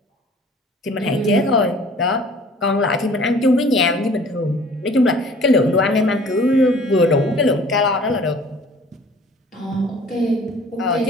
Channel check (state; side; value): normal; both; correlation 0.50